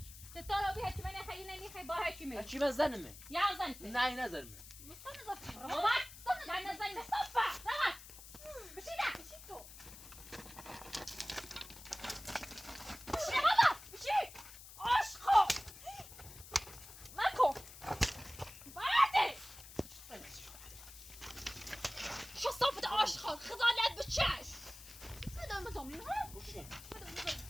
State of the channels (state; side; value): noise; left; hiss, 16 dB below the sound